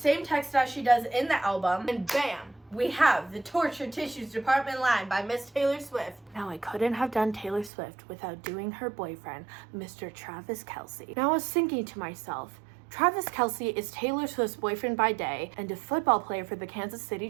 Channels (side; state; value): left; drops out; at 7.7 s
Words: text as she does in the album. And bam! We have the Tortured Tissues Department line by Miss Taylor Swift. Now, I couldn't have done Taylor Swift without doing her boyfriend, Mr. Travis Kelce. Now, I was thinking to myself, Travis Kelce is Taylor Swift's boyfriend by day and a football player for the Kansas City